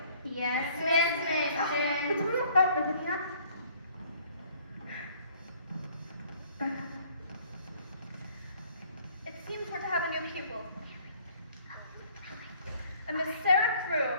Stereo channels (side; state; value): both; inverted; correlation -0.59